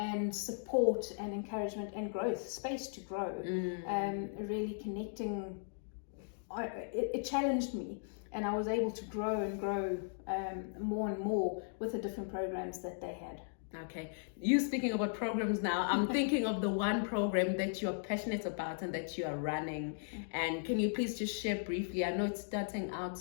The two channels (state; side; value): silent; right; digital silence